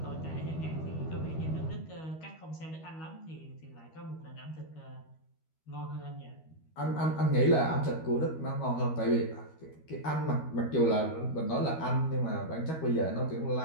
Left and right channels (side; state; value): right; late; 13 ms